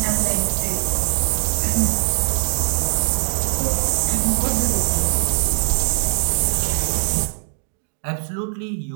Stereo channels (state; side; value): silent; left; digital silence